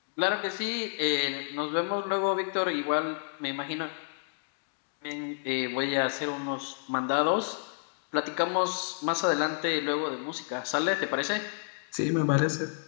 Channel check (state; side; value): silent; right; digital silence